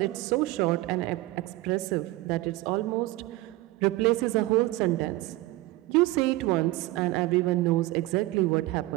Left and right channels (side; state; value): left; quieter; 18.6 dB